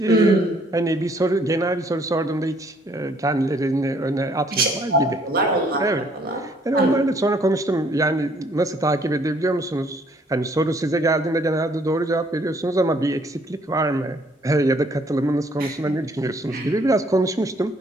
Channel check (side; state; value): both; normal; correlation 0.63